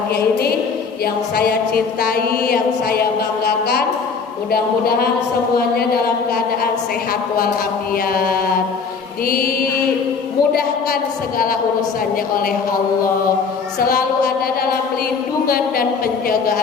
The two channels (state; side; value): quieter; right; 5.3 dB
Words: ini, yang saya cintai, yang saya banggakan. Mudah-mudahan semuanya dalam keadaan sehat walafiat, dimudahkan segala urusannya oleh Allah, selalu ada dalam lindungan dan